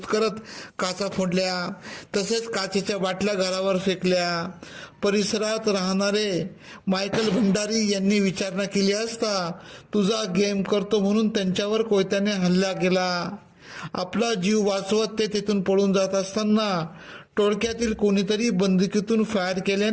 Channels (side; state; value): both; identical; correlation 1.00